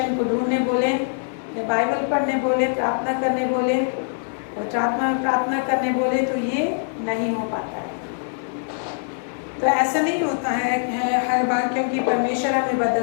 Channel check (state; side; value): silent; right; digital silence